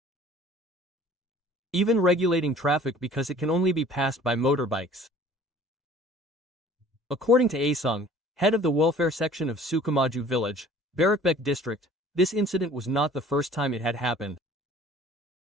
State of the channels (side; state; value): both; normal; correlation 0.50